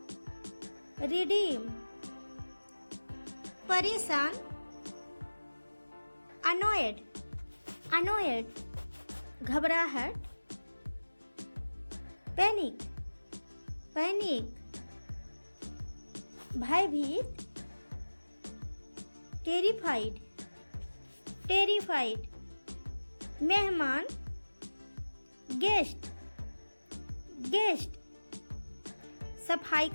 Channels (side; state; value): both; inverted; correlation -1.00